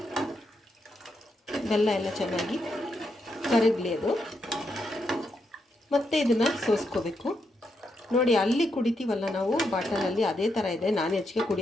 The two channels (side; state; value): both; normal; correlation 0.81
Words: ಬೆಲ್ಲ ಎಲ್ಲ ಚೆನ್ನಾಗಿ ಕರಗಲಿ ಅದು. ಮತ್ತು ಇದನ್ನು ಸೋಸ್ಕೋಬೇಕು. ನೋಡಿ ಅಲ್ಲಿ ಕುಡಿತೀವಲ್ಲ ನಾವು ಬಾಟಲಲ್ಲಿ, ಅದೇ ಥರ ಇದೆ. ನಾನು ಹೆಚ್ಚಿಗೆ